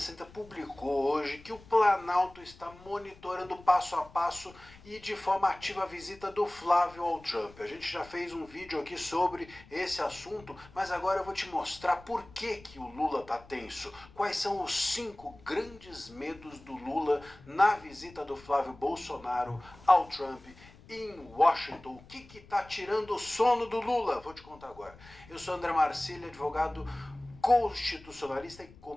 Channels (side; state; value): left; noise; rumble, 22 dB below the sound